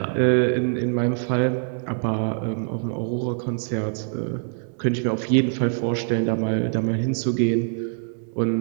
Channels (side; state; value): left; silent; digital silence